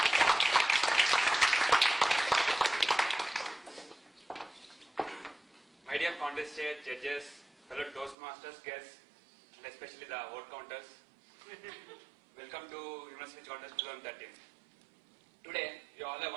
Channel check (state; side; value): drops out; left; at 8.2 s